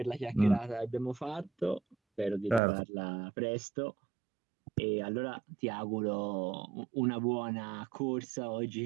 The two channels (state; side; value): drops out; left; at 2.6 s